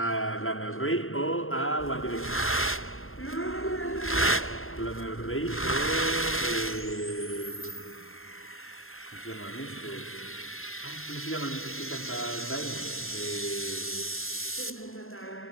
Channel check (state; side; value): late; right; 0.61 ms